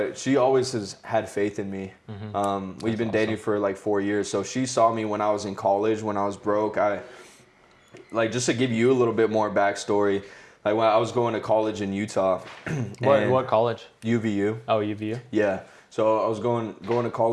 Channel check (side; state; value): both; identical; correlation 1.00